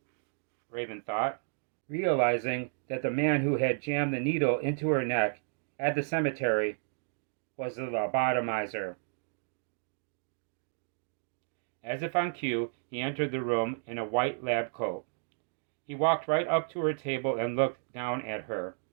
Raven thought, realizing that the man who had jammed the needle into her neck at the cemetery was the lobotomizer. As if on cue, he entered the room in a white lab coat. He walked right up to her table and looked down at her.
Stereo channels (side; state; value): left; silent; digital silence